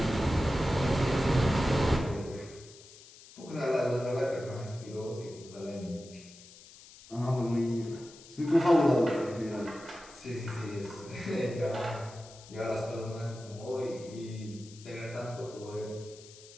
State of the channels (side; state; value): left; noise; hiss, 20 dB below the sound